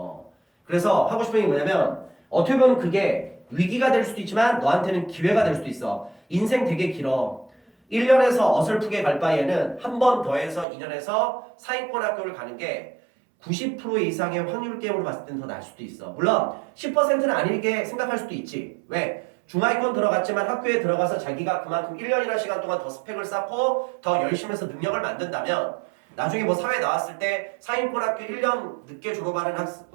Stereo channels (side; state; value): left; drops out; at 10.7 s